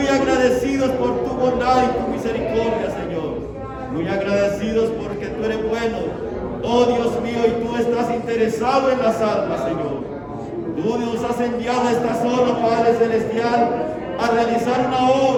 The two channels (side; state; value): both; identical; correlation 1.00